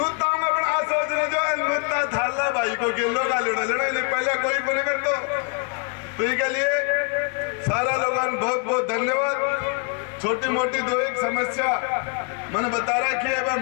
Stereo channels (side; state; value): right; quieter; 33.8 dB